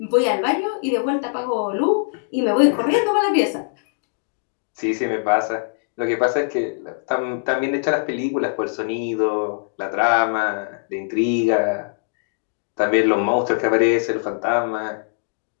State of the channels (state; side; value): silent; right; digital silence